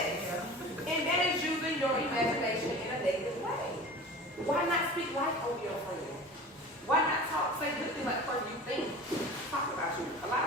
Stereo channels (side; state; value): both; normal; correlation 0.38